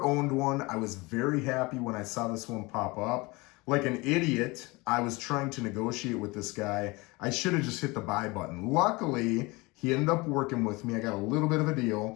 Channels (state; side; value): quieter; right; 24.2 dB